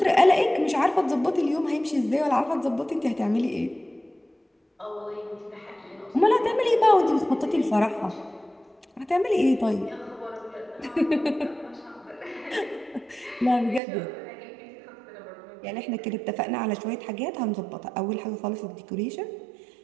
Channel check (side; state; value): left; drops out; at 13.8 s